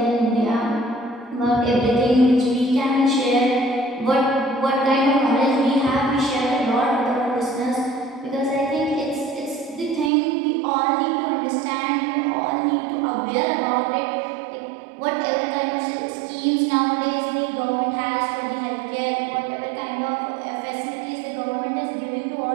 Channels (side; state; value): left; drops out; at 10.1 s